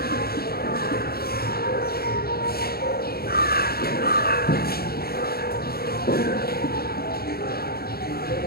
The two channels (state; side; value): late; right; 0.45 ms